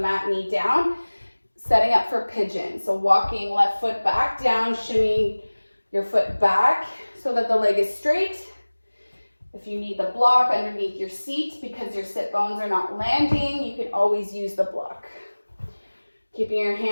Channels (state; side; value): inverted; both; correlation -1.00